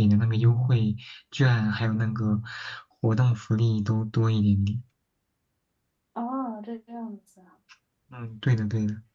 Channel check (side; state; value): both; identical; correlation 1.00